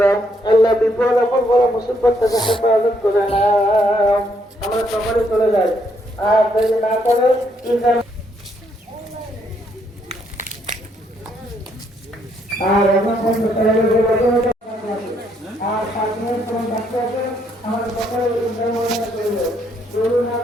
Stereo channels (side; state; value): both; normal; correlation 0.72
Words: দাও। আল্লাহ বিপদ আপদ বড় মুসিবত থেকে হেফাজত করে না। আমরা সকলে চলে যাই, আর দেরি না করে আর এখন আর 5 মিনিট সময় বাকি আছে। আমাদের সকলে না